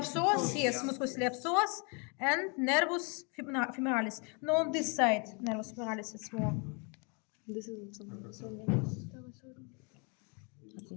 yes, musculus iliopsoas, and nervus femoralis. No, on this side, nervus femoralis is more. This is also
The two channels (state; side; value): quieter; right; 34.5 dB